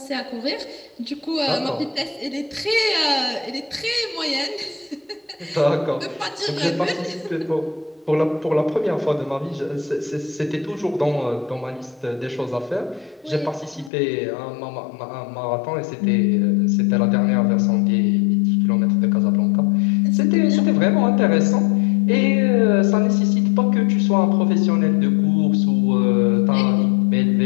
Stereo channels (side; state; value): right; drops out; at 13.9 s